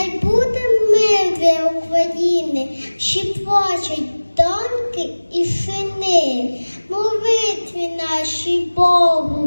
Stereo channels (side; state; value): both; inverted; correlation -1.00